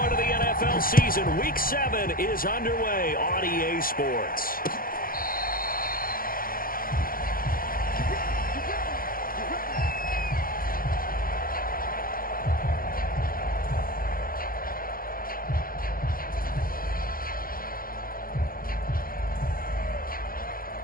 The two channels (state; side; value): late; right; 0.42 ms